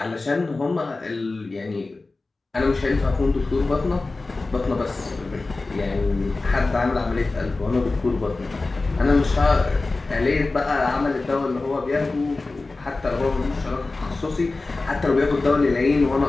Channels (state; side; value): quieter; right; 3.4 dB